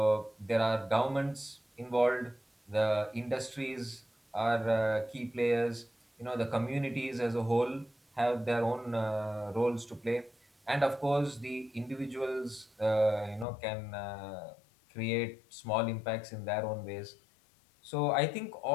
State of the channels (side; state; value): right; drops out; at 13.5 s